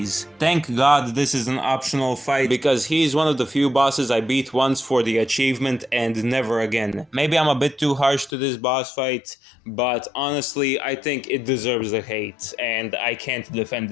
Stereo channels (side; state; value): right; drops out; at 8.3 s